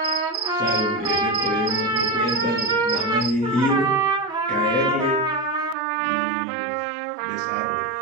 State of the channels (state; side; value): drops out; left; at 5.8 s